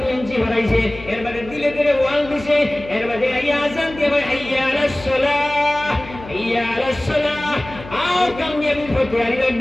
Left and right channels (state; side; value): noise; left; hum, 16 dB below the sound